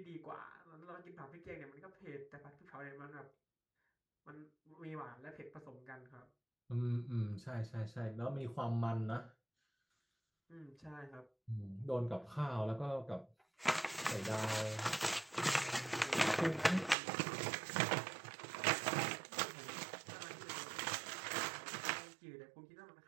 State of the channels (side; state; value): left; drops out; at 16.9 s